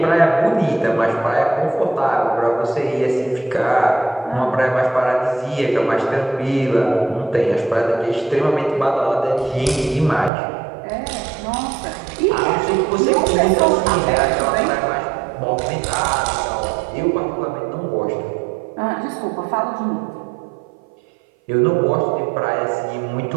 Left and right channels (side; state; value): left; drops out; at 10.3 s